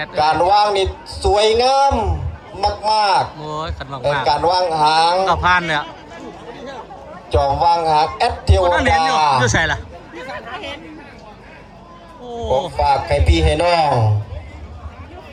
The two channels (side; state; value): both; identical; correlation 1.00